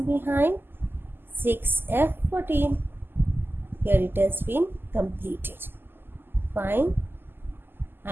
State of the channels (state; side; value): late; left; 0.098 ms